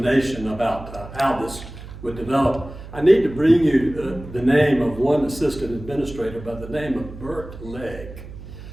about how this would develop. I need to bring you the name of one assistant administrator by the name of Bert Legg,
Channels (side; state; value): right; noise; hum, 14 dB below the sound